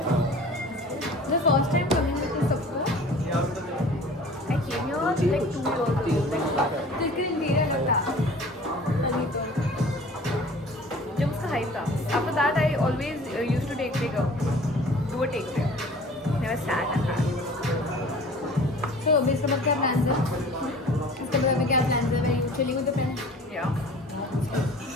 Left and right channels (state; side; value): normal; both; correlation 0.45